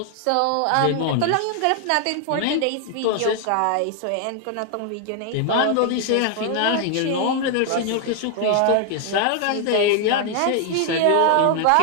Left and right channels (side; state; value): both; different; correlation 0.00